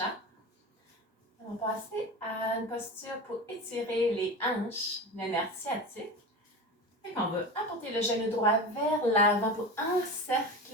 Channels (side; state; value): both; normal; correlation 0.27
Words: va passer à une posture pour étirer les hanches, le nerf sciatique. On va apporter le genou droit vers l'avant pour